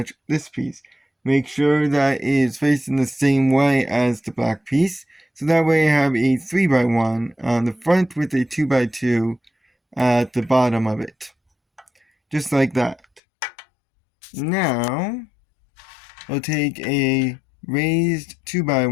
this piece. Make sure that it is facing the same way as the black piece. So that way you have a 3x1 on the front with a 2x2 at the bottom of it. Just like that. Now, we'll take a raised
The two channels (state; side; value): drops out; right; at 13.2 s